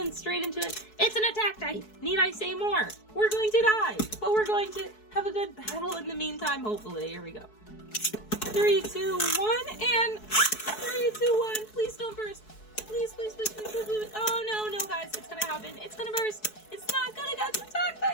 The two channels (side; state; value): right; late; 4.7 ms